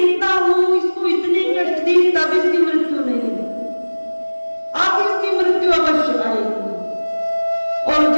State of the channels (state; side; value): inverted; both; correlation -1.00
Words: हूं इसको इतने कष्ट दिए तब इसकी मृत्यु नहीं हुई, अब इसकी मृत्यु अवश्य आएगी। और